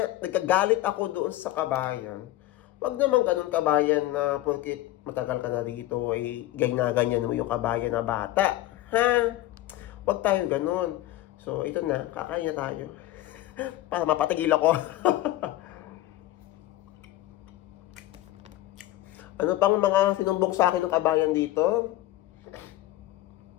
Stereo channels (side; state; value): right; quieter; 15.5 dB